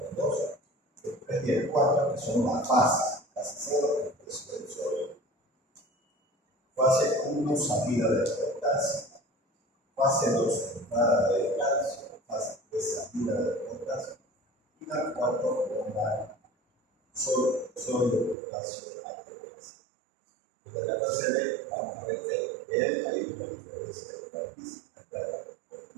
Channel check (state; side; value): drops out; left; at 18.4 s